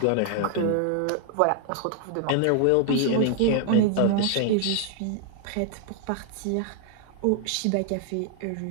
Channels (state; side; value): different; both; correlation 0.00